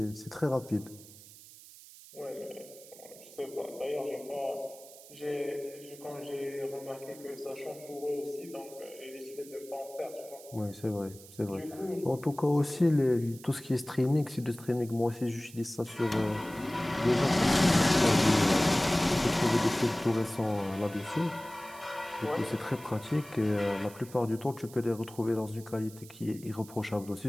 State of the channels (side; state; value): right; noise; hiss, 19 dB below the sound